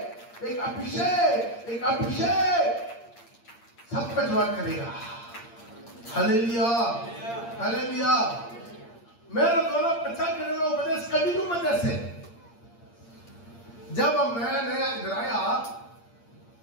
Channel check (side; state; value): right; late; 8.7 ms